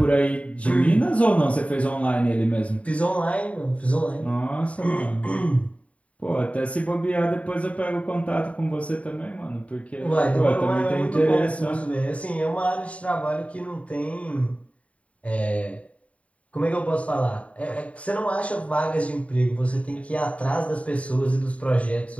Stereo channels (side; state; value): right; late; 0.065 ms